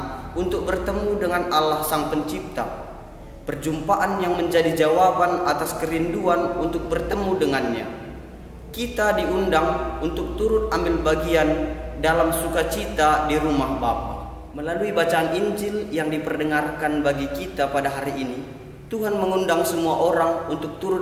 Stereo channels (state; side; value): identical; both; correlation 1.00